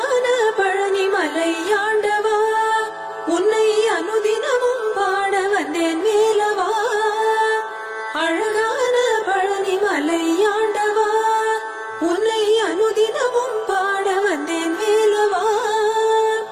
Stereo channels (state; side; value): identical; both; correlation 1.00